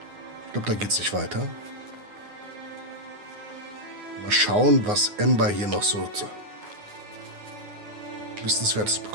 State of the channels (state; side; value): late; left; 9.6 ms